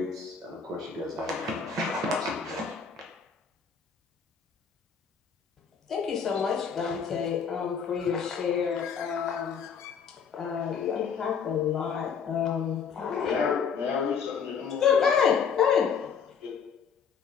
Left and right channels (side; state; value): right; quieter; 6.5 dB